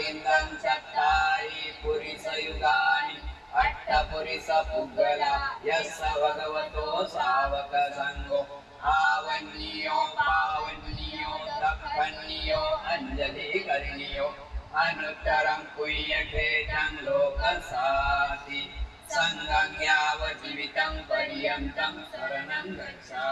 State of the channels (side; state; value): both; identical; correlation 1.00